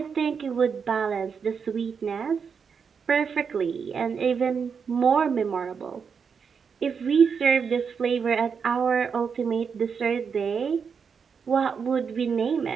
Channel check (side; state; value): left; quieter; 6.2 dB